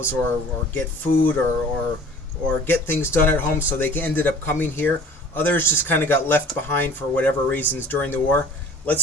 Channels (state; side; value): normal; both; correlation 0.47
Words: or get food or get things done at home, so they ended up coming here. Others just kind of got left behind for whatever reasons during the war.